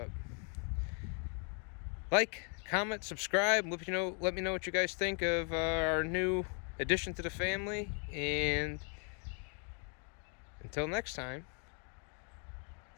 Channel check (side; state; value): right; quieter; 39.7 dB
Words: like, comment, subscribe, let me know what you guys think of our new addition to the family, and until next time,